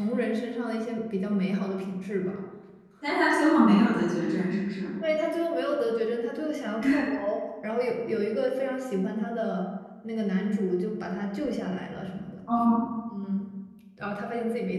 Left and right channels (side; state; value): both; identical; correlation 1.00